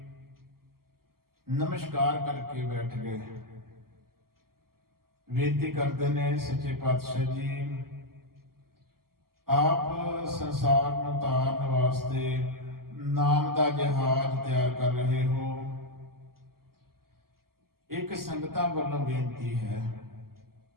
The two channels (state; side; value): late; left; 0.92 ms